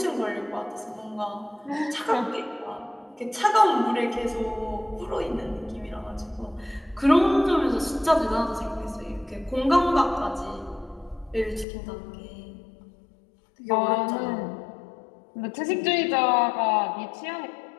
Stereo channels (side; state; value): right; drops out; at 11.7 s